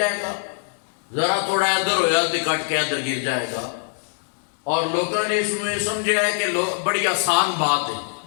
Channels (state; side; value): silent; right; digital silence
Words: گا، ذرا تھوڑا ادھر ہویا تے کٹ کے ادھر گر جائے گا۔ اور لوگوں نے اس میں سمجھا ہے کہ بڑی آسان بات ہے،